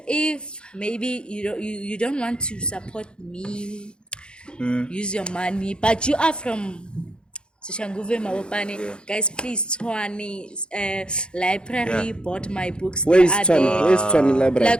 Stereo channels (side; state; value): right; late; 0.052 ms